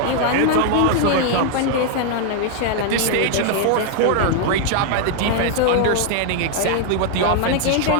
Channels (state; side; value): different; both; correlation 0.00